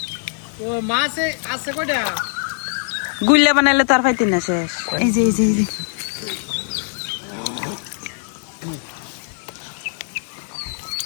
ও মাছ আছে কয়টা গুল্লা বানাইলে তো আর পাইতি না শেষ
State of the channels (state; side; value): silent; right; digital silence